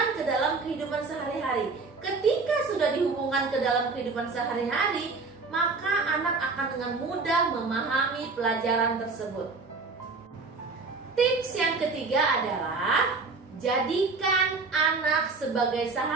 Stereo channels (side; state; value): left; quieter; 4.1 dB